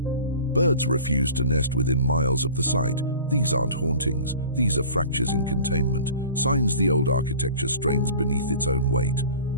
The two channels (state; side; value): inverted; both; correlation -0.42